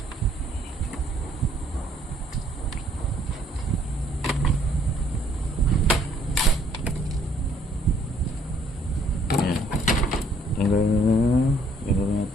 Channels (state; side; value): normal; both; correlation 0.64